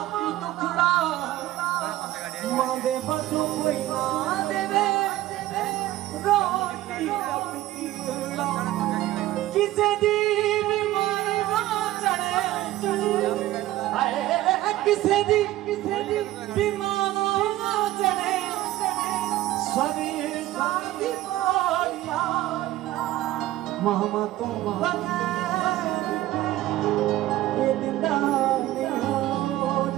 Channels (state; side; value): quieter; left; 15.5 dB